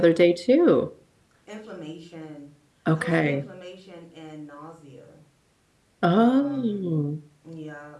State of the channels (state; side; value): identical; both; correlation 1.00